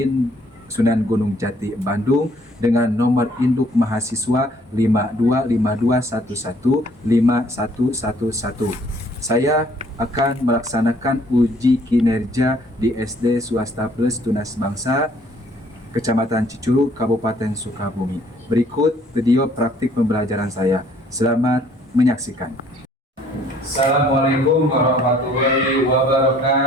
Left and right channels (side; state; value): both; normal; correlation 0.61